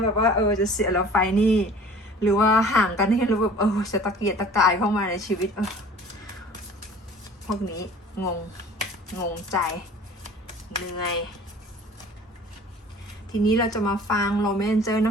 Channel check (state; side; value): normal; both; correlation 0.47